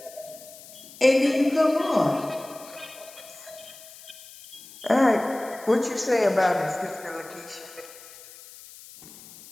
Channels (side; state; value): left; noise; hiss, 19 dB below the sound